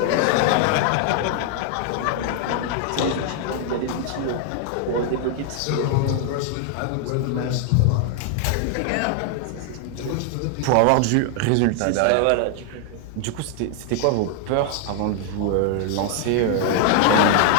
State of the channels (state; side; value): different; both; correlation 0.00